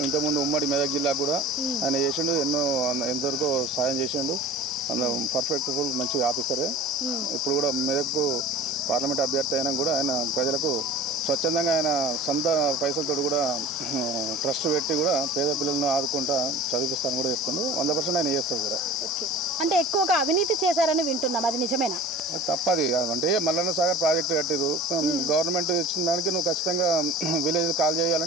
ఇంతకుముందు ఉమ్మడి మెదక్ జిల్లా కూడా ఆయన చేసిండు, ఎంతవరకు సాయం చేసిండు. పర్ఫెక్ట్ మంచి ఆఫీసరే. ఇప్పుడు కూడా మెదక్ పార్లమెంట్ అభ్యర్థి అయినా కూడా ఆయన ప్రజలకు స్వచ్ఛందంగా ఆయన సొంత పైసలతో కూడా ట్రస్ట్ పెట్టి కూడా పేద పిల్లలను ఆదుకుంటా చదివిస్తాను కూడా చెప్తుండు. 100% ఆయన చేస్తాడు కూడా. అంటే ఎక్కువగా అవినీతి చేశారని వింటున్నాం, అది నిజమేనా? అది తప్పది. అంటే మల్లన్న సాగర్ ప్రాజెక్టు కట్టిరు, గవర్నమెంట్ ఇచ్చిన దానికి నువ్వు ఖచ్చితంగా విలేజ్ కాల్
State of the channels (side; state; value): both; normal; correlation 0.40